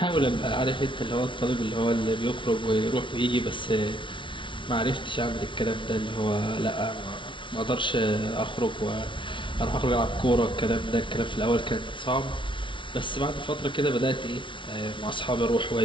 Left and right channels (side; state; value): right; late; 0.24 ms